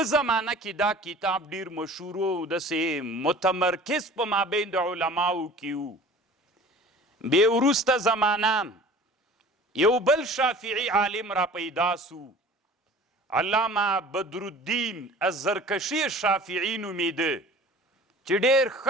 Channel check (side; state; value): both; normal; correlation 0.44